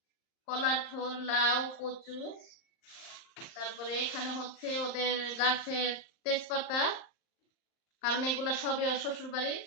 কলার থোর, লাউ, কচু, তারপরে এখানে হচ্ছে ওদের গাছের তেজপাতা, কারণ এগুলা সবে শ্বশুর বাড়ির।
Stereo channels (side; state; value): right; late; 39 ms